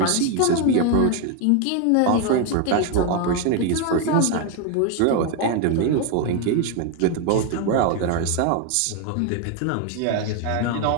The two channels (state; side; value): different; both; correlation 0.01